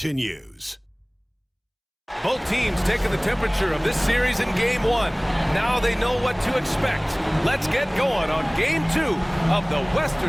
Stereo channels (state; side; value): identical; both; correlation 1.00